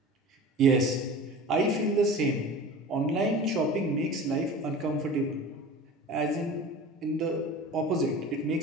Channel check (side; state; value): both; normal; correlation 0.37